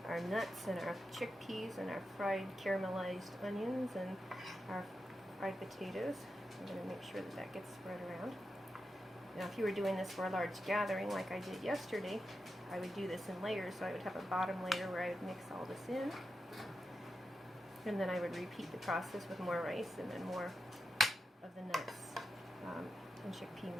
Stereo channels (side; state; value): both; normal; correlation 0.88